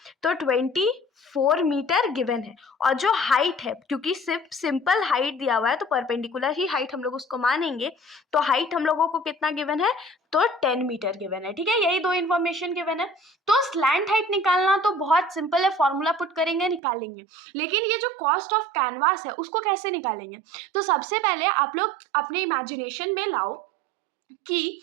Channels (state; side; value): drops out; left; at 16.8 s